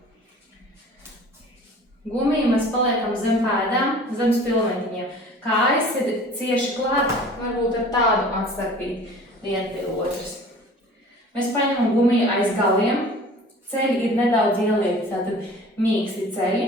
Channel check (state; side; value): normal; both; correlation 0.45